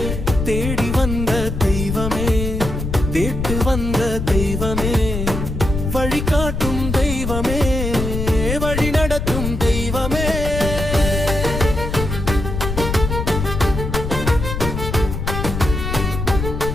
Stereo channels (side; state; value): left; noise; rumble, 4 dB below the sound